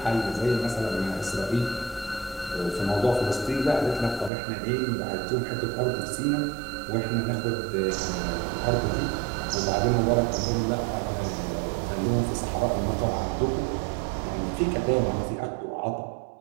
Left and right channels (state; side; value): drops out; left; at 4.3 s